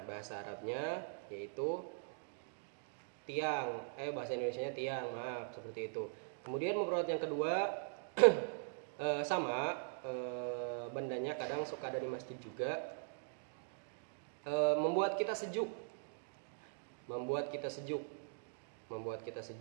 bahasa Arabnya yaitu tiang. Bahasa Indonesianya tiang, maaf, seperti itu. Kemudian mufradat yang kedua sama, bendanya kadang suka ada di masjid juga. Membuat kita sejuk. membuat kita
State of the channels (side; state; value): left; silent; digital silence